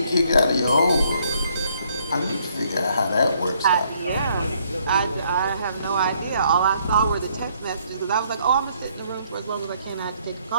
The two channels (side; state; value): both; inverted; correlation -0.67